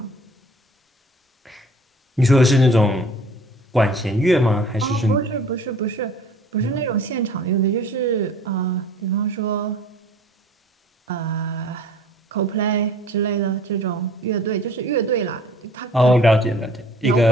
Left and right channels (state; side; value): normal; both; correlation 0.50